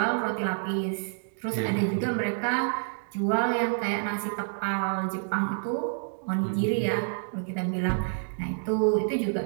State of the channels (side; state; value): left; silent; digital silence